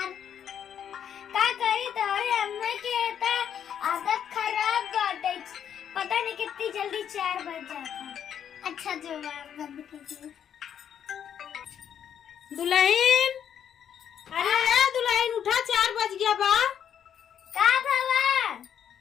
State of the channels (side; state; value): right; quieter; 8.9 dB